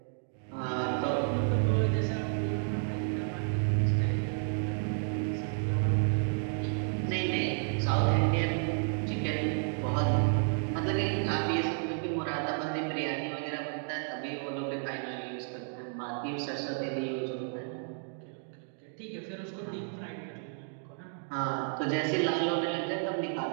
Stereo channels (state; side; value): silent; left; 57 dB below the other